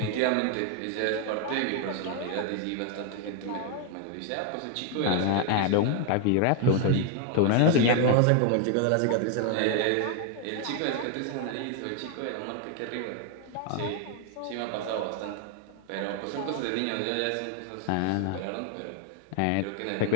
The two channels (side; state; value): both; different; correlation 0.00